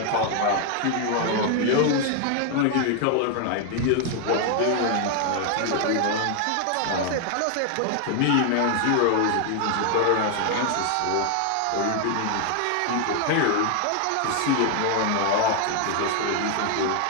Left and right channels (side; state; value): both; different; correlation 0.00